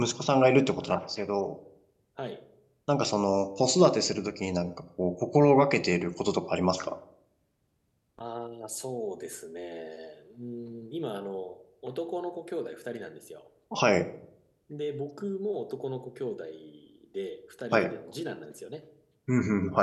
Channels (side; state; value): both; identical; correlation 1.00